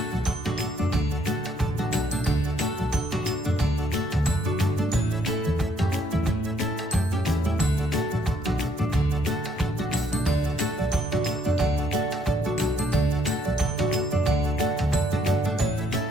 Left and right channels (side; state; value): both; normal; correlation 0.68